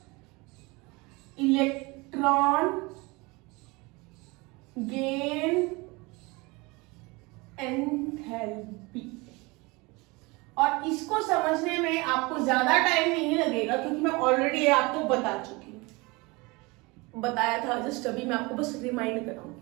इलेक्ट्रॉन गेन एंथैल्पी। और इसको समझने में आपको ज्यादा टाइम नहीं लगेगा क्योंकि मैं ऑलरेडी आपको बता चुकी हूं, बताया था, जस्ट अभी मैं आपको बस रिमाइंड कराऊंगी।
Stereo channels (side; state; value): left; quieter; 25.2 dB